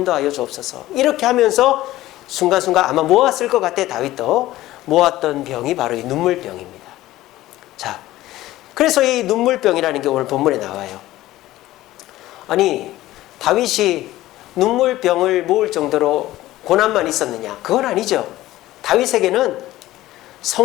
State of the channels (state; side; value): quieter; right; 15.9 dB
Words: 주옵소서. 이렇게 하면서 순간순간 아마 모았을 것 같아. 다윗도 모았던 병이 바로 이 눈물병입니다. 자, 그래서 이 눈물병이라는 게 오늘 본문에 나와요. 아니, 다윗이 눈물병을 모을 정도로 고난만 있었느냐? 그건 아니죠. 다윗에게는